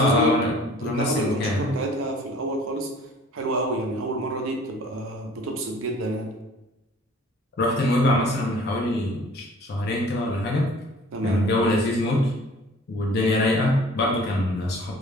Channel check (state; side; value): normal; both; correlation 0.50